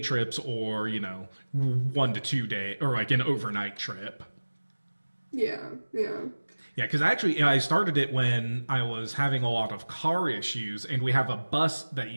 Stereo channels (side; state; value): both; inverted; correlation -1.00